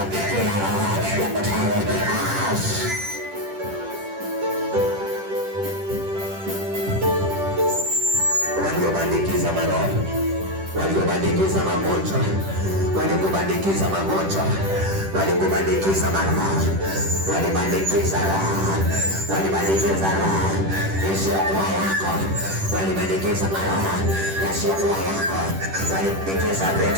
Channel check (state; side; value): late; left; 10 ms